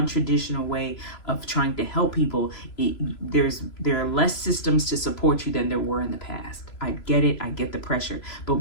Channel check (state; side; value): late; right; 3.0 ms